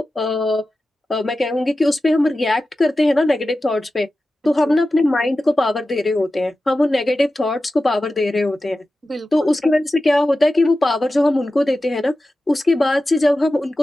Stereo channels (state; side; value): normal; both; correlation 0.94